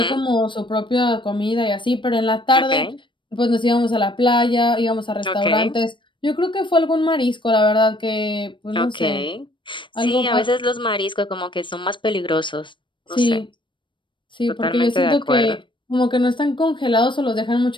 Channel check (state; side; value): late; right; 0.24 ms